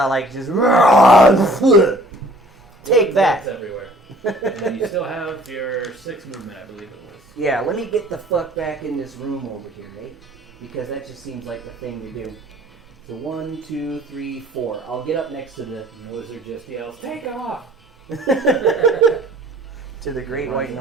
like just take that. That's everywhere. And then you still have your 6 movement, I believe it was. Yeah, let me get the fuck back in this room over here, right? Because that just seems like the thing to do. So 1, 2, 3, 4. I'll get up next to the And the wizard just yells, "Take off!" to the Great White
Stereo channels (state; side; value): normal; both; correlation 0.53